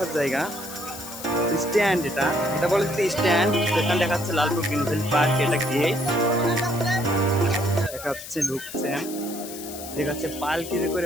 জায়গা। স্ট্যান্ড, এটা এটা বলে যে স্ট্যান্ড। এখানে দেখা যাচ্ছে লালপুর গ্রিনফিল্ড পার্ক, এটা গেট দেখা যাচ্ছে, ঢুকছেন দেখা যাচ্ছে পালকিতে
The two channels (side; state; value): left; noise; hiss, 12 dB below the sound